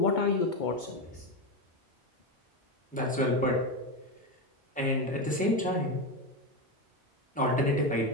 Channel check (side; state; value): both; normal; correlation 0.14